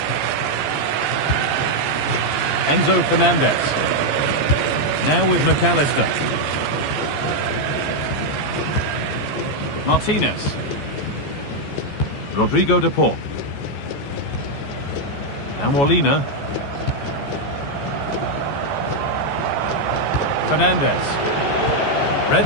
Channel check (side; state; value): right; late; 14 ms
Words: Enzo Fernandez. Now with McAllister. Martinez. Rodrigo de Paul. Now Molina. Fernandez.